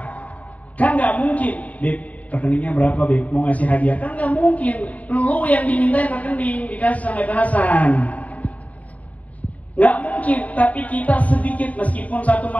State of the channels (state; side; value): late; right; 0.070 ms